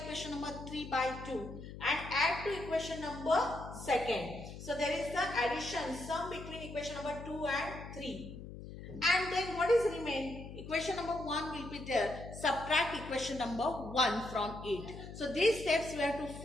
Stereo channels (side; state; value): left; noise; hum, 12 dB below the sound